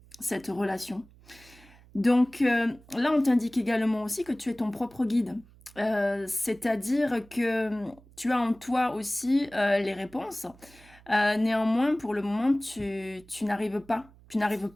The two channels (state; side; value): noise; right; hum, 25 dB below the sound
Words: cette relation. Donc là, on t'indique également aussi que tu es ton propre guide. C'est-à-dire que tu as en toi aussi les réponses. Néanmoins, pour le moment, tu n'arrives pas. Tu n'arrives